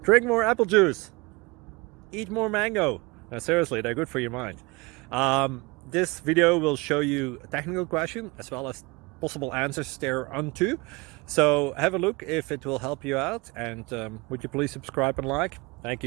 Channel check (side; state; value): left; quieter; 25.2 dB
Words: Drink more apple juice. Eat more mango. No, seriously, they're good for your mind. This video will show you a technical question as well as possible answers thereunto. So have a look if it will help you out, and would you please subscribe and like? Thank